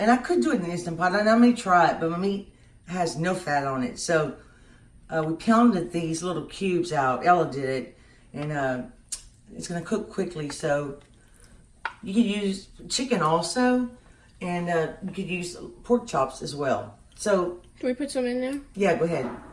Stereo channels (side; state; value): both; identical; correlation 1.00